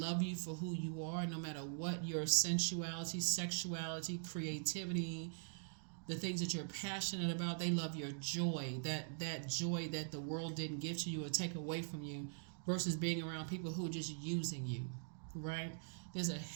you for who you are, no matter what your sensuality, sexuality, creativity, the things that you're passionate about. They love your joy, that joy that the world didn't give to you or take away from you, versus being around people who are just using you, right? There's a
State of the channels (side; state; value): left; silent; digital silence